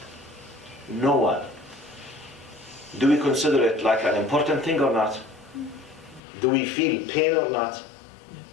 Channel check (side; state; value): right; drops out; at 6.2 s